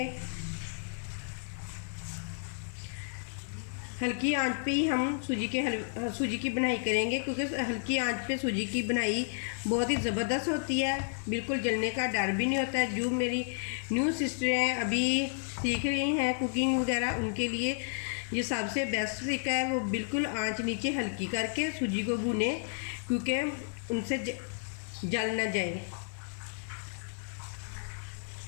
हल्की आंच पे ही हम सूजी की बनाई करेंगे, क्योंकि हल्की आंच पे सूजी की बनाई बहुत ही ज़बरदस्त होती है। बिल्कुल जलने का डर भी नहीं होता है। जो मेरी न्यू सिस्टर हैं, अभी सीख रही हैं कुकिंग वगैरह, उनके लिए ये सबसे बेस्ट तरीका है। वो बिल्कुल आंच नीचे हल्की करके सूजी को भूने, क्योंकि उनसे जल ना जाए।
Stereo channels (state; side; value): silent; right; digital silence